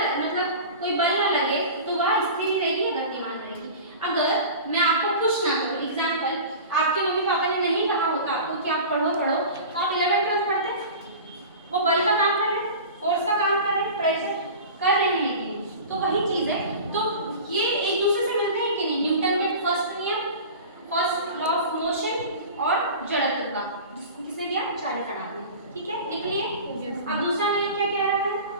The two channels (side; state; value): both; inverted; correlation -0.35